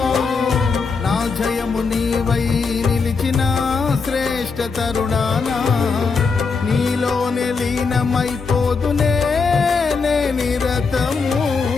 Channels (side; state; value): right; quieter; 4.8 dB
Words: నా జయము నీవై నిలిచిన శ్రేష్ఠ తరుణానా నీలోనే లీనమైపోదునే నే నిరతము